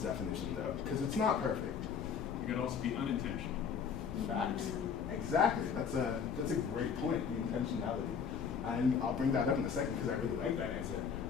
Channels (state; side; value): quieter; right; 6.7 dB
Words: though? Because it's not perfect. It could also be unintentional. Facts. Exactly. That's a great point, the intentionality. And I'll bring that up in a second because I really like that answer.